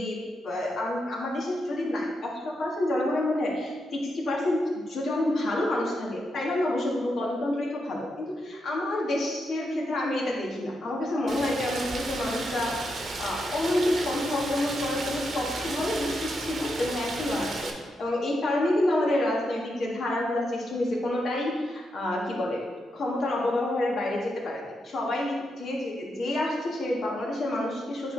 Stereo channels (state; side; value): normal; both; correlation 0.84